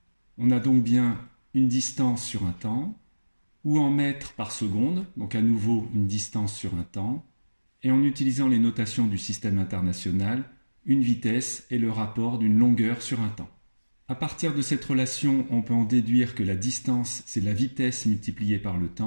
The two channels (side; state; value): both; inverted; correlation -1.00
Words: On a donc bien une distance sur un temps, ou en mètres par seconde, donc à nouveau une distance sur un temps, et en utilisant les notations du système international, une vitesse est le rapport d'une longueur sur un temps. À partir de cette relation, on peut en déduire que la distance, c'est la vitesse multipliée par le